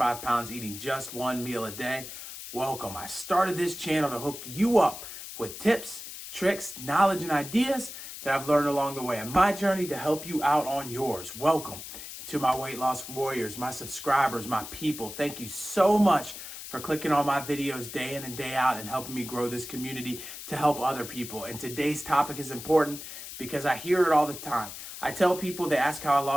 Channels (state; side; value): noise; left; hiss, 11 dB below the sound